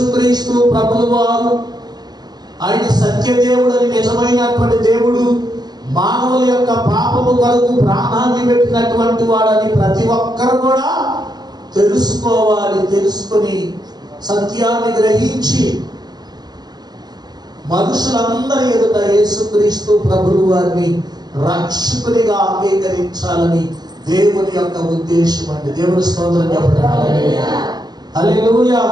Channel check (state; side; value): late; left; 0.20 ms